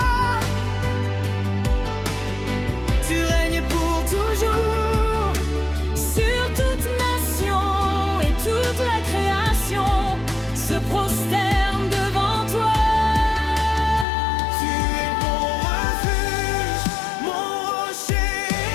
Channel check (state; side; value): drops out; right; at 14.1 s